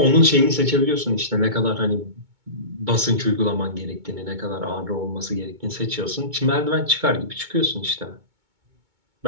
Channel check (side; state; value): left; late; 2.2 ms